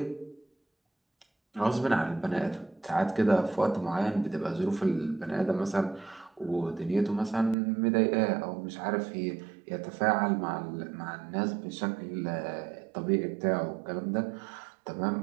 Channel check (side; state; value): left; drops out; at 7.6 s